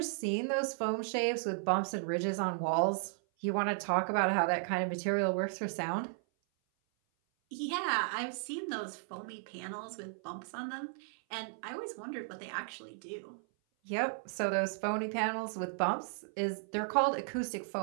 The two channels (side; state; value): left; silent; 54 dB below the other